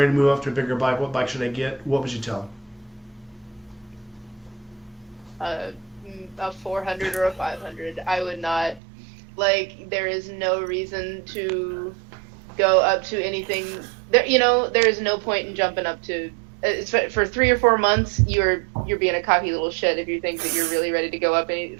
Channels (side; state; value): left; drops out; at 8.8 s